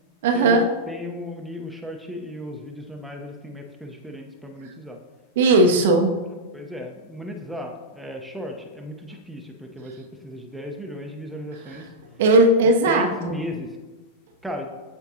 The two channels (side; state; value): both; normal; correlation -0.09